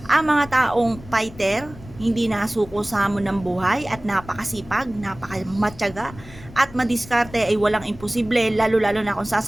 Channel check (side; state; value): left; noise; rumble, 18 dB below the sound